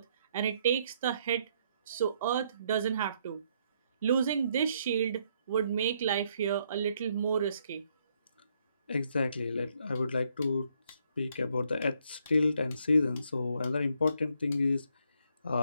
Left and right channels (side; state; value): both; inverted; correlation -0.72